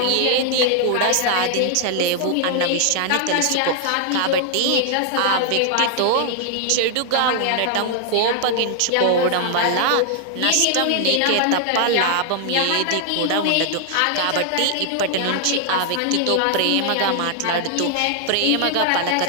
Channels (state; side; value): different; both; correlation 0.00